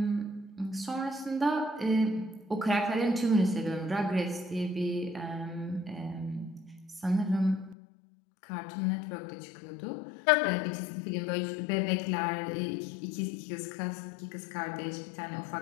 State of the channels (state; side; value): drops out; right; at 7.8 s